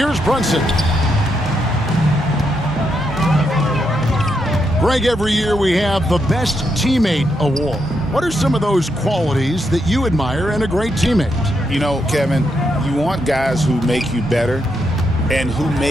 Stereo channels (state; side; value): normal; both; correlation 0.80